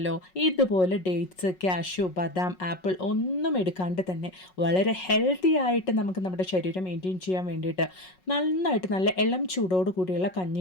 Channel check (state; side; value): late; right; 5.4 ms